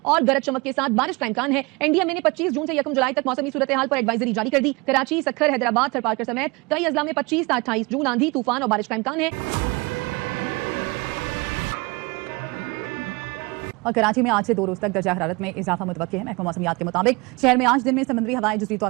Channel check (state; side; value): quieter; left; 26.1 dB